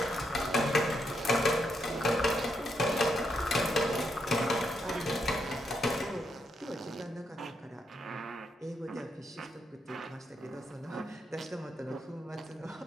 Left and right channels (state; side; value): normal; both; correlation 0.79